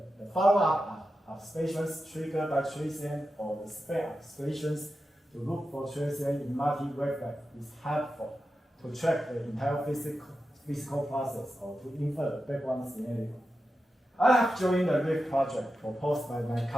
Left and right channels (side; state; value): both; normal; correlation 0.91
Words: the follow-up observations triggered by transient or the spare observations to look for transient in multi-wavelength is helpful to track the entire physical process or to infer the background scenario. I have joined the RIF project proposed by my